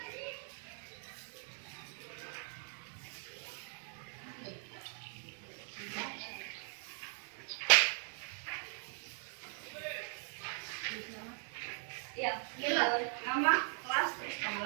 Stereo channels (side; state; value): left; silent; 51 dB below the other